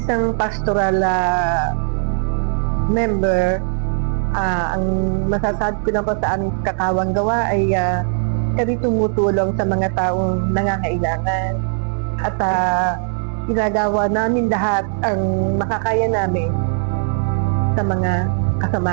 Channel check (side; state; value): left; silent; 66 dB below the other